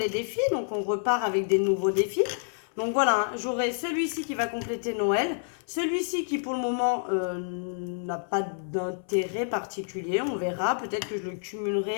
défis, donc on repart avec des nouveaux défis. Donc voilà, hein, j'aurai celui-ci qui va compléter Noël, celui-ci qui pour le moment n'a pas d'intérêt particulier, on verra, peut-être que je le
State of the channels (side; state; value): right; silent; 59 dB below the other